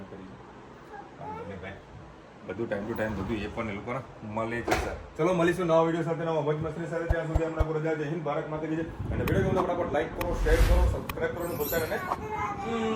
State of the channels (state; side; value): identical; both; correlation 1.00